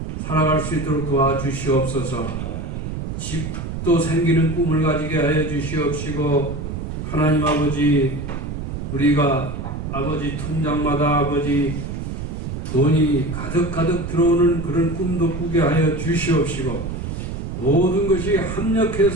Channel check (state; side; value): noise; right; rumble, 6 dB below the sound